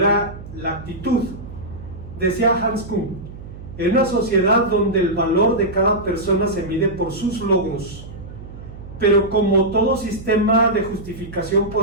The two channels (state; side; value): noise; right; hum, 14 dB below the sound